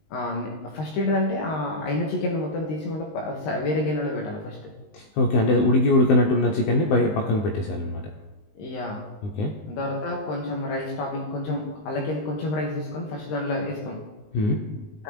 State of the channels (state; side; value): late; right; 19 ms